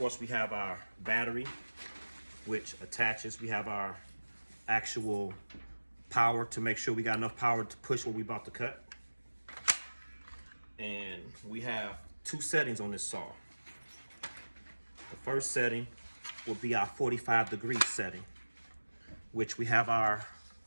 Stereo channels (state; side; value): inverted; both; correlation -1.00